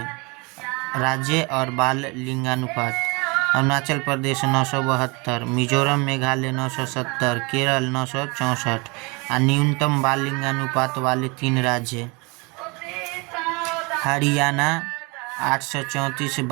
राज्य और बाल लिंगानुपात: अरुणाचल प्रदेश 972, मिजोरम मेघालय 970, केरल 964। और न्यूनतम बाल लिंगानुपात वाले 3 राज्य: हरियाणा 834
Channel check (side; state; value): left; quieter; 28.4 dB